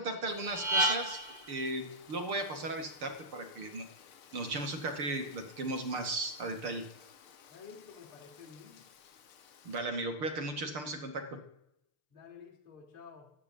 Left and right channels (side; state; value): left; late; 6.7 ms